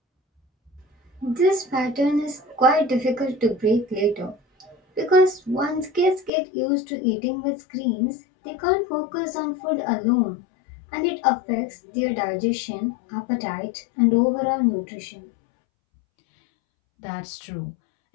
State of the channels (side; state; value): right; drops out; at 6.3 s